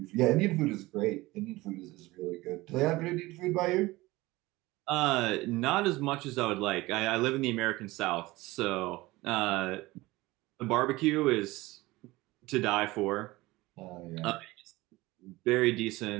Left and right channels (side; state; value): left; quieter; 20.0 dB